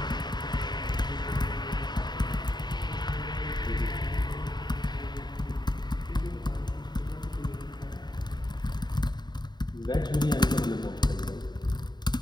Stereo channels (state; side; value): late; right; 0.21 ms